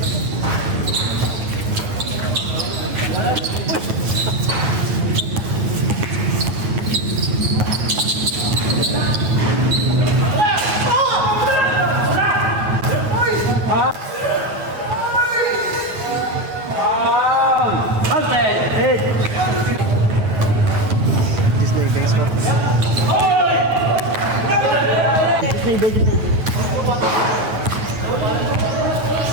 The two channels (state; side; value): late; left; 9.2 ms